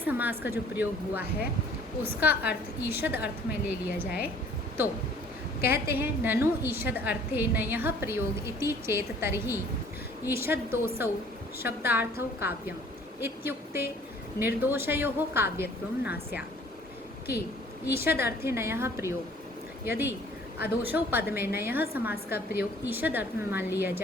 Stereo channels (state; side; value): normal; both; correlation 0.54